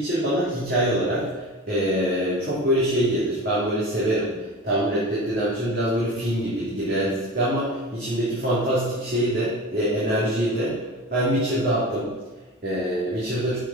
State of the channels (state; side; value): normal; both; correlation 0.32